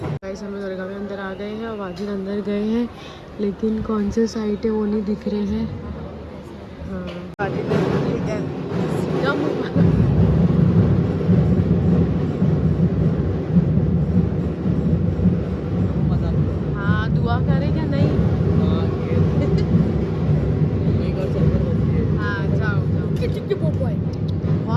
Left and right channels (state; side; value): identical; both; correlation 1.00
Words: गाइस हम दरगाह में अंदर आ गए हैं और वाजिद अंदर गए हैं, लेकिन कौन से साइड है वो नहीं दिख रहे हैं। हाँ वाजिद ने सीधा हाँ दुआ करें क्या नहीं। हाँ जाओ